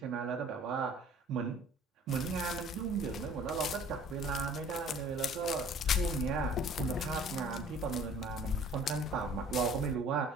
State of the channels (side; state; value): both; normal; correlation 0.51